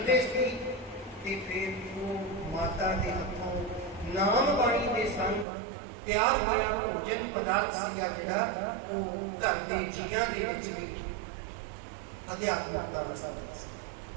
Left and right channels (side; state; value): left; drops out; at 5.5 s